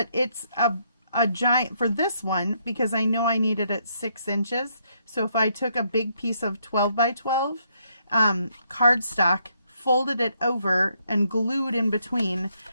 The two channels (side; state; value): both; inverted; correlation -0.74